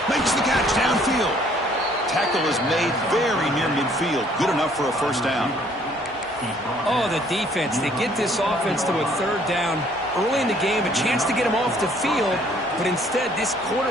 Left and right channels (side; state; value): both; normal; correlation 0.61